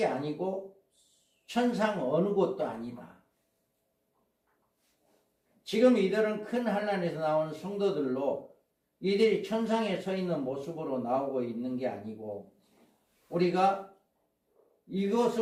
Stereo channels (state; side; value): identical; both; correlation 1.00